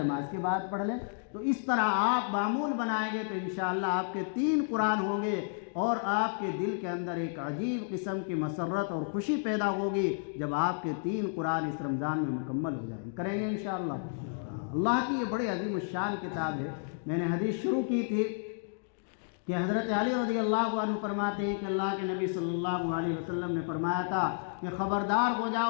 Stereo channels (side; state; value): right; silent; digital silence